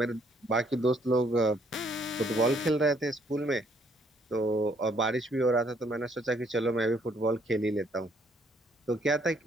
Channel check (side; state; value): both; normal; correlation 0.66